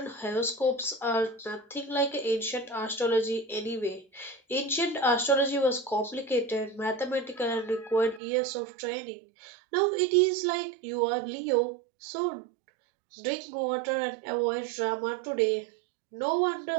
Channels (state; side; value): drops out; left; at 8.2 s